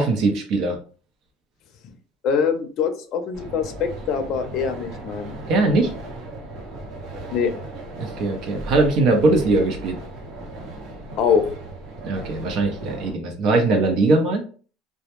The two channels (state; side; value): normal; both; correlation 0.52